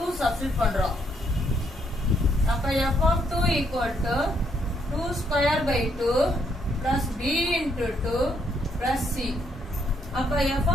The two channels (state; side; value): normal; both; correlation 0.73